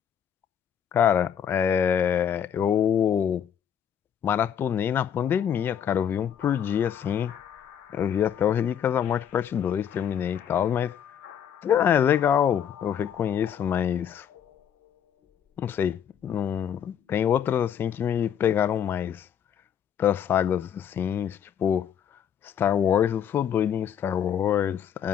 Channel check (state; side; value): quieter; right; 8.8 dB